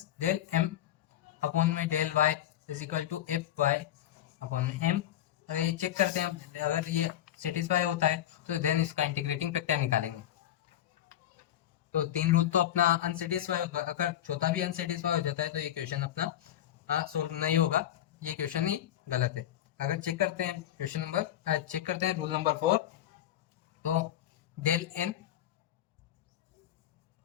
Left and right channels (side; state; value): right; quieter; 11.9 dB